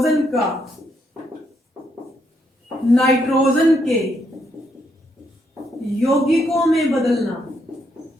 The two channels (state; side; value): normal; both; correlation 0.76